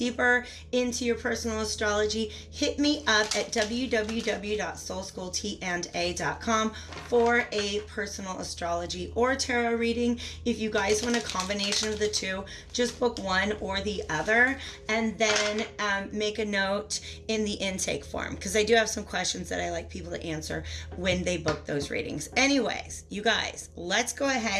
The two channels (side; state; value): both; identical; correlation 1.00